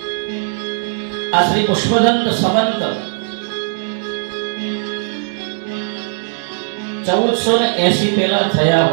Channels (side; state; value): left; silent; digital silence